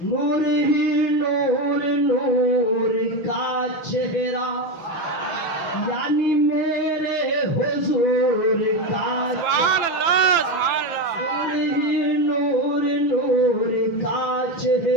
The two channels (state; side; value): late; right; 6.0 ms